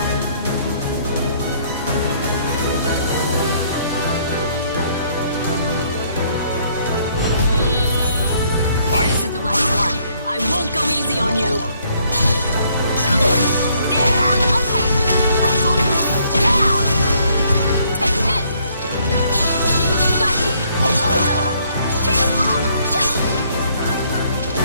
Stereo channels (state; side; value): inverted; both; correlation -0.66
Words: This is the last one. I won't go easy on you.